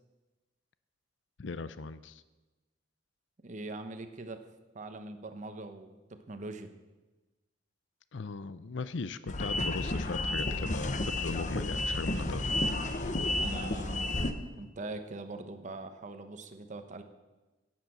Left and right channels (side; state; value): both; normal; correlation 0.65